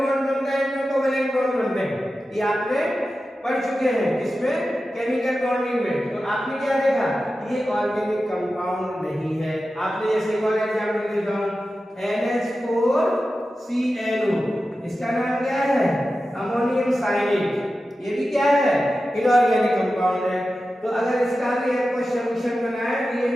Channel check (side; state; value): both; normal; correlation 0.93